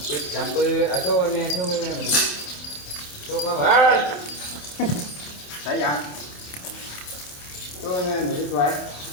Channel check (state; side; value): late; right; 27 ms